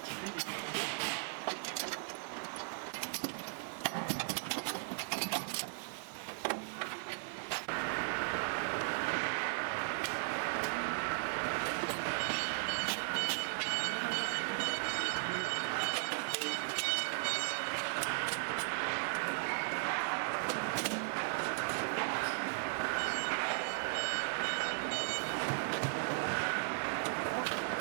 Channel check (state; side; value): silent; left; digital silence